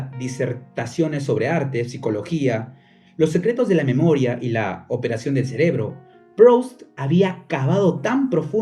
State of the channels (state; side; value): identical; both; correlation 1.00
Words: disertaciones sobre arte, psicología, los secretos de la memoria y la operación del cerebro, Proust había cavado tan